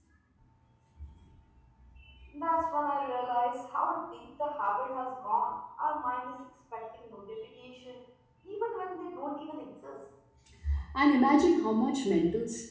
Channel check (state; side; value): identical; both; correlation 1.00